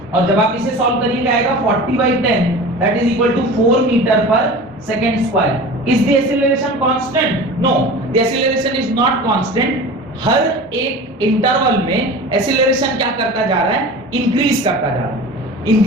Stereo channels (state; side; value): normal; both; correlation 0.36